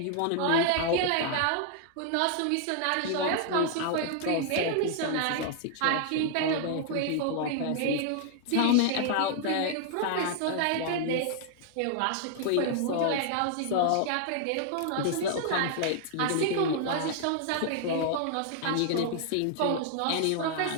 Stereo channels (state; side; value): different; both; correlation 0.00